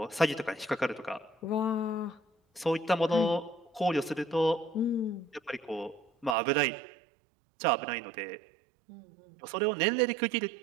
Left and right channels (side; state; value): left; drops out; at 6.4 s